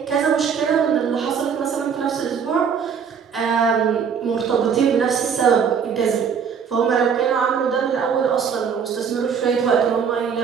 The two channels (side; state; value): left; quieter; 6.9 dB